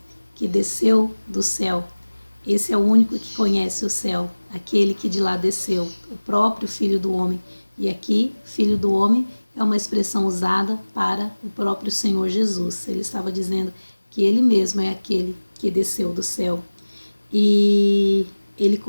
que desceu do céu. Esse é o único que conhece o céu, aquele que de lá desceu, o próprio Filho do Homem. E aqui, Filho do Homem é uma expressão usada para o próprio Senhor Jesus. Ele estava dizendo que ele mesmo é aquele que desceu do céu. E ele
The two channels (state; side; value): inverted; both; correlation -1.00